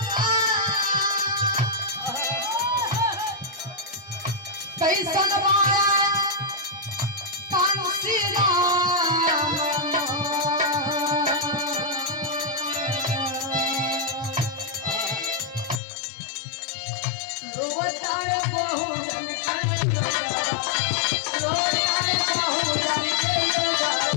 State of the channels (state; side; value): drops out; right; at 15.8 s